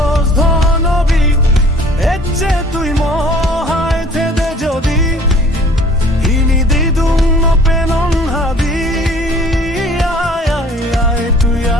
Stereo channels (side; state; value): both; normal; correlation 0.52